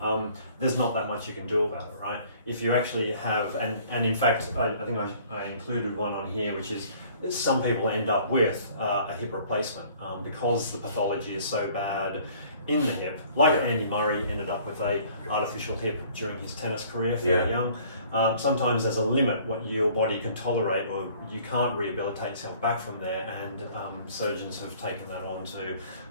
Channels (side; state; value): both; inverted; correlation -0.54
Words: there's not that much you can do about it, right? If you actually have, and in fact, I think I included one on here, which is some people end up with a hip replacement because the pathology is so bad in the hip. Like Andy Murray ended up with a artificial hip during his tennis career, fairly young. Sometimes there's a limit what your body can tolerate, or you can't rehabilitate yourself back from there, and surgeons have taken that on to